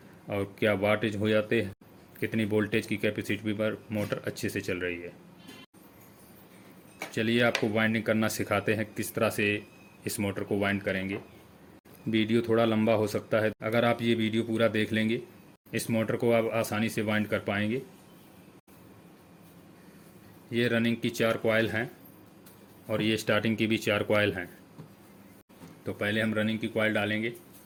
और क्या वाटेज हो जाते हैं, कितनी वोल्टेज की कैपेसिटी पर मोटर अच्छे से चल रही है। चलिए आपको वाइंडिंग करना सिखाते हैं किस तरह से इस मोटर को वाइंड करेंगे। वीडियो थोड़ा लंबा हो सकता है, अगर आप ये वीडियो पूरा देख लेंगे इस मोटर को आप आसानी से वाइंड कर पाएंगे। ये रनिंग की 4 कॉइल हैं और ये स्टार्टिंग की भी 4 कॉइल हैं। तो पहले हम रनिंग की कॉइल डालेंगे।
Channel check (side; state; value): both; identical; correlation 1.00